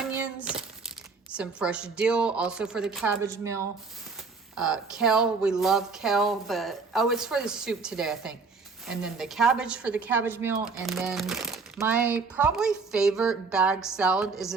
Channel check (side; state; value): left; quieter; 4.6 dB